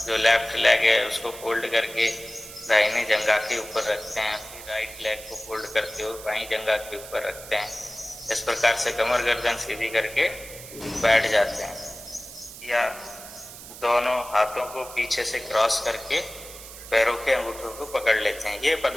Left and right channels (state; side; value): noise; right; hiss, 14 dB below the sound